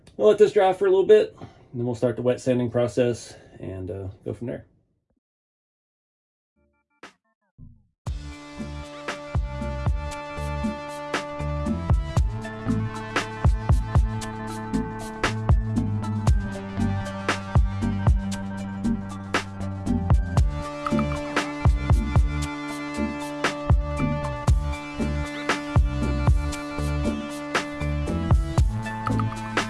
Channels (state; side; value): identical; both; correlation 1.00